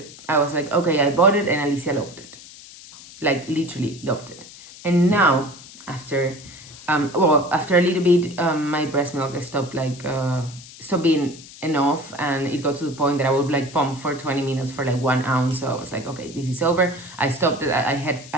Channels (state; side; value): noise; left; hiss, 18 dB below the sound